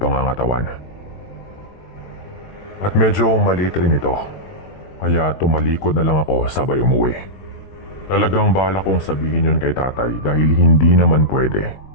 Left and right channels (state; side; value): late; right; 21 ms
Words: At medyo maliit rin ito. Kaya tumalikod na lang ako sabay umuwi. Talagang bala kong sabihin yun kay tatay dahil hindi naman pwede.